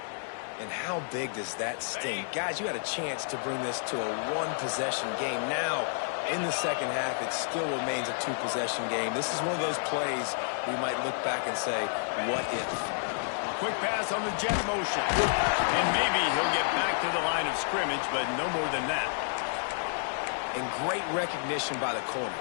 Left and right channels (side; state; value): right; silent; 58 dB below the other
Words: And how big does that sting? Guys, you had a chance to bring this to a one-possession game. Now, in the second half, it still remains a two-possession game. This is one of those plays we might look back and say, what if? Quick pass on the jet motion. And maybe he'll get back to the line of scrimmage, but no more than that. And great recognition by the corner.